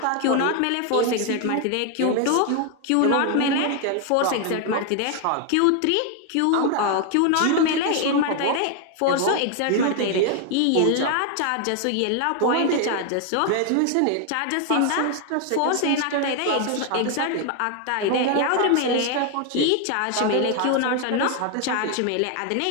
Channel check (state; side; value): different; both; correlation 0.01